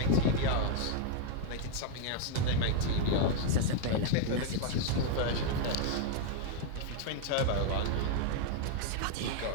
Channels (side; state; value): both; different; correlation 0.01